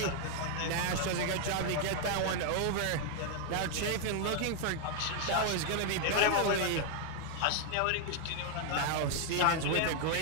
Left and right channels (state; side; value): different; both; correlation 0.00